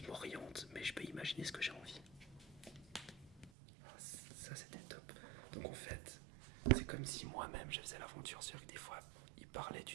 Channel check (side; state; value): left; drops out; at 3.5 s